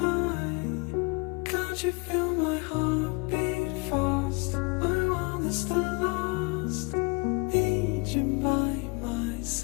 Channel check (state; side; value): quieter; right; 29.8 dB